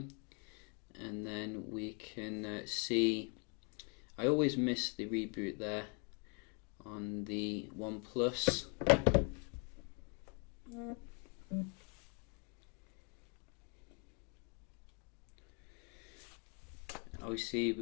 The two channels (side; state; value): right; quieter; 34.9 dB